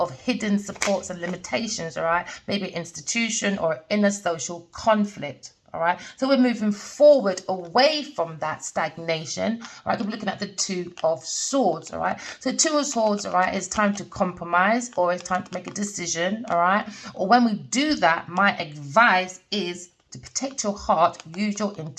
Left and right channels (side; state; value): both; identical; correlation 1.00